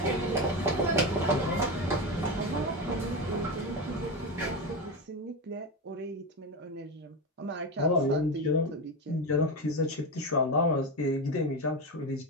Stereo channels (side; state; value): both; normal; correlation 0.17